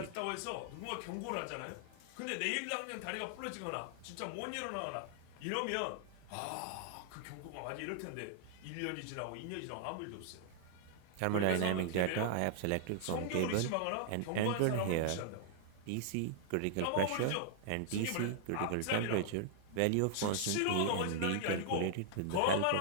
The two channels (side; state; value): both; different; correlation -0.01